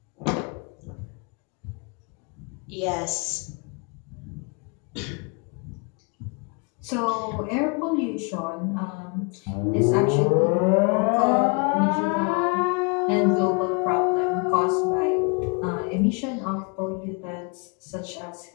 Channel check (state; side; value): quieter; right; 33.8 dB